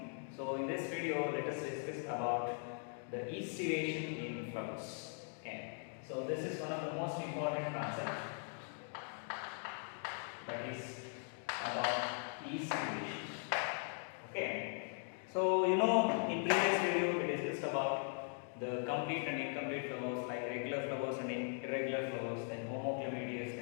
So in this video, let us discuss about the estivation in flowers. Okay. So this is one of the most important concepts, that is about estivation. Okay. So in previous video we discussed about the complete and incomplete flowers, like regular flowers and irregular flowers, then homoclamadeous,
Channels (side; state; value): right; silent; 51 dB below the other